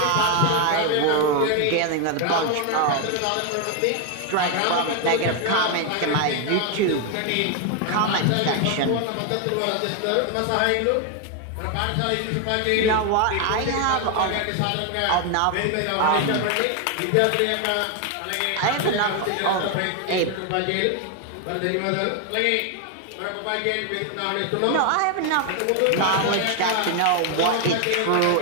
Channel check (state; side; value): different; both; correlation 0.01